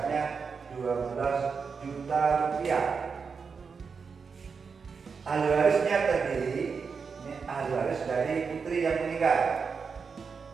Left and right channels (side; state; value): left; quieter; 5.5 dB